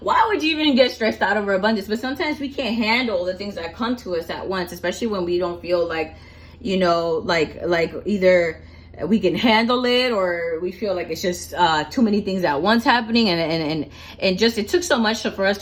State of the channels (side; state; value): both; identical; correlation 1.00